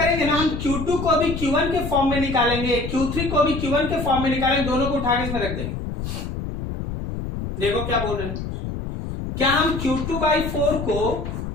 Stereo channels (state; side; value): noise; left; rumble, 5 dB below the sound